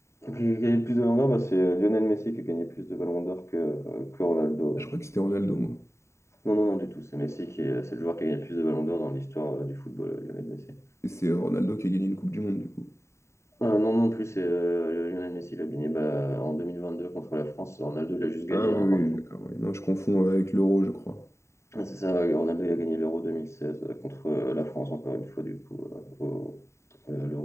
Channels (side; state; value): right; late; 0.14 ms